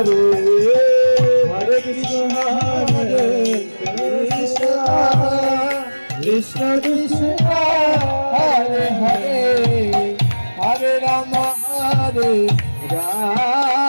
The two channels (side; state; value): both; inverted; correlation -1.00